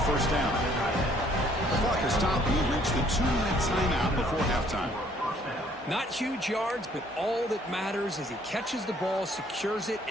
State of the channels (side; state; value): both; normal; correlation 0.62